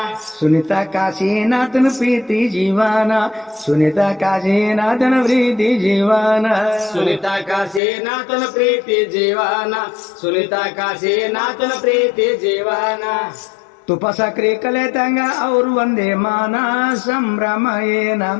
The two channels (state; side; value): drops out; right; at 7.8 s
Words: ಸುನಿತಾ ಕಾಶಿನಾಥನ ಪ್ರೀತಿ ಜೀವನ, ಸುನಿತಾ ಕಾಶಿನಾಥನ ಪ್ರೀತಿ ಜೀವನ, ಸುನಿತಾ ಕಾಶಿನಾಥನ ಪ್ರೀತಿ ಜೀವನ, ಸುನಿತಾ ಕಾಶಿನಾಥನ ಪ್ರೀತಿ ಜೀವನ. ತುಪ್ಪ ಸಕ್ರಿ ಕಲೆತಂಗ ಅವ್ರು ಒಂದೇ ಮಾನ, ಸಂಭ್ರಮ ಏನ